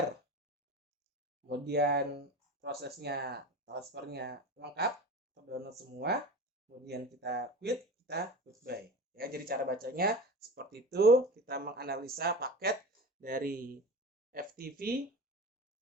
Kemudian prosesnya transfernya lengkap, terdownload semua. Kemudian kita quit, kita goodbye. Ya, jadi cara bacanya seperti itu. Kita menganalisa paket dari FTP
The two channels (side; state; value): both; normal; correlation 0.32